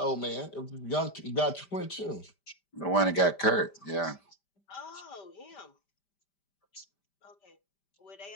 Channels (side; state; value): right; late; 5.1 ms